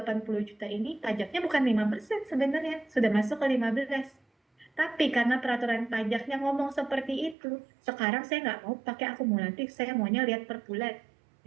juta ini pajaknya bukan 5% sebenarnya, sudah masuk ke 15. Tapi karena peraturan pajaknya ngomong seperti itu, sekarang saya nggak mau pakai akumulatif, saya maunya lihat per bulan.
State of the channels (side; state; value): left; drops out; at 7.4 s